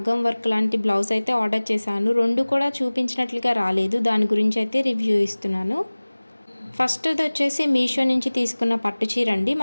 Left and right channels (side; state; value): both; inverted; correlation -1.00